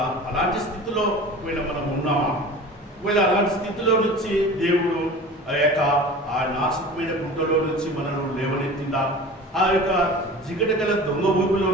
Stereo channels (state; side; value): normal; both; correlation 0.38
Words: అలాంటి స్థితిలో ఒకవేళ మనం ఉన్నామా, ఒకవేళ అలాంటి స్థితిలో నుంచి దేవుడు ఆ నాశకమైన గుంటలో నుంచి మనల్ని లేవనెత్తిందా, ఆ యొక్క జిగటగల దొంగ ఊపిలో